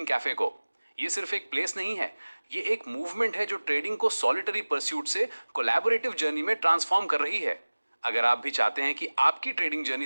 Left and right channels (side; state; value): both; inverted; correlation -1.00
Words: कैफे को। ये सिर्फ एक प्लेस नहीं है, ये एक मूवमेंट है जो ट्रेडिंग को सॉलिटरी परस्यूट से कोलैबोरेटिव जर्नी में ट्रांसफॉर्म कर रही है। अगर आप भी चाहते हैं कि आपकी ट्रेडिंग